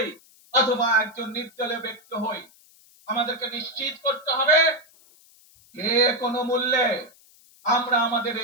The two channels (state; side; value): noise; left; hiss, 28 dB below the sound